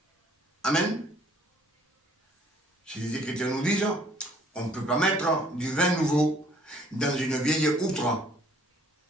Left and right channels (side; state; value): both; normal; correlation 0.59